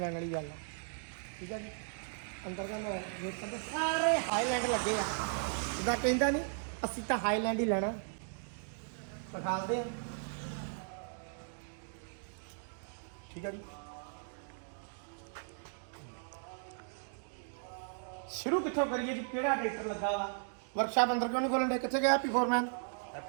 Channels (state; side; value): silent; left; digital silence